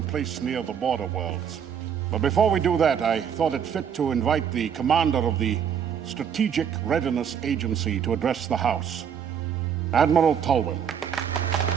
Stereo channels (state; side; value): quieter; left; 8.0 dB